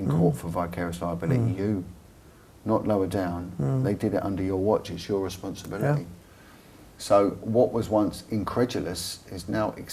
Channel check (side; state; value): both; identical; correlation 1.00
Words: court for vicarious liability, you, not lower down. They did it under your watch, it's your responsibility. Yeah. So what was once incredulous is now